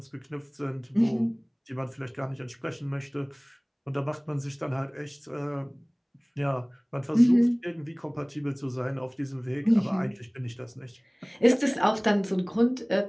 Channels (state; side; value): identical; both; correlation 1.00